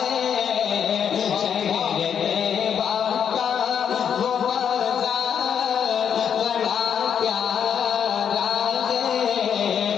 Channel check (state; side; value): quieter; right; 8.0 dB